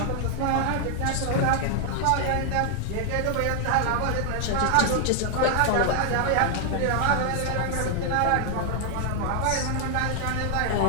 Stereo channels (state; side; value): different; both; correlation 0.00